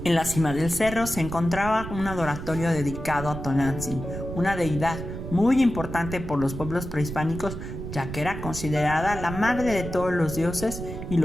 En la cima del cerro se encontraba un adoratorio dedicado a Tonantzin, una deidad muy importante por los pueblos prehispánicos, ya que era considerada la madre de todos los dioses y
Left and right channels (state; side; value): noise; right; rumble, 8 dB below the sound